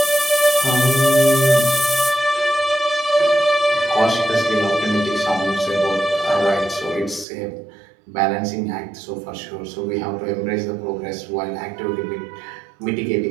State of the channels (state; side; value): drops out; left; at 7.2 s